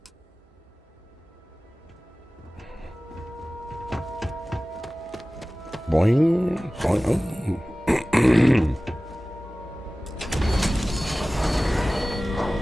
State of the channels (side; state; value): both; normal; correlation 0.97